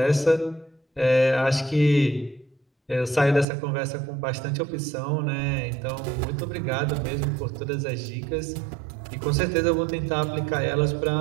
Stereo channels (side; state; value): left; drops out; at 3.5 s